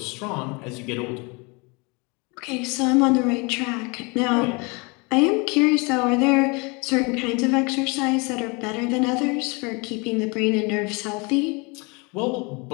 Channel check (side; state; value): right; quieter; 29.0 dB